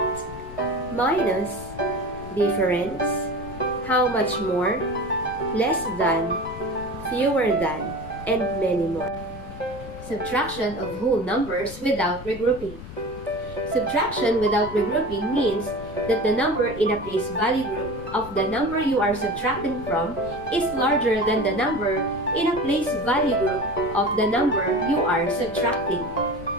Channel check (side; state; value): left; noise; rumble, 13 dB below the sound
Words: minus, difference, how much more, less than, fewer than, and many more. Subtraction of whole numbers without regrouping. Subtraction without regrouping means that the number in a place value group of the number you are subtracting from is larger than the number in a place value group of the number you are subtracting.